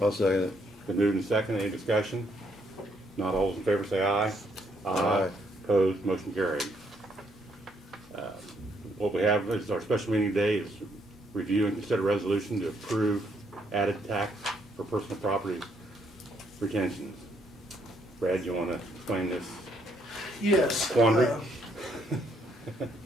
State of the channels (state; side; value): normal; both; correlation 0.71